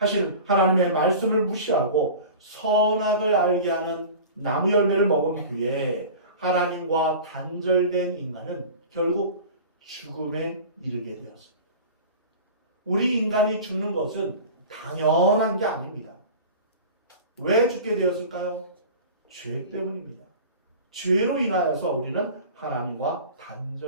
하나님의 말씀을 무시하고 선악을 알게 하는 나무 열매를 먹은 후에 하나님과 단절된 인간은 결국 죽음에 이르게 되었습니다. 우리 인간이 죽는 것은 당연한 게 아닙니다. 왜 죽게 되었을까요? 죄 때문입니다. 죄로 인하여서 우리는 하나님과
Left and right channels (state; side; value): inverted; both; correlation -0.37